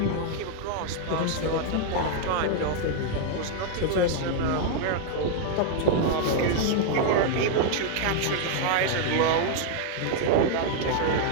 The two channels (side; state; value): both; different; correlation 0.00